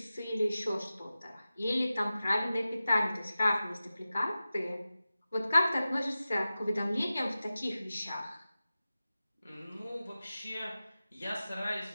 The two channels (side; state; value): both; inverted; correlation -0.94